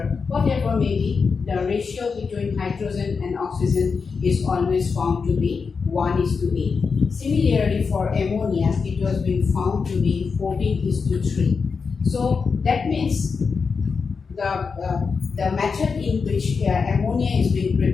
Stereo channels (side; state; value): right; quieter; 5.2 dB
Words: whatever may be, the ratio between hydrogen and oxygen is always found to be 1:8. Similarly for ammonia, it was being found to be 14:3. So that means the method in which ammonia is being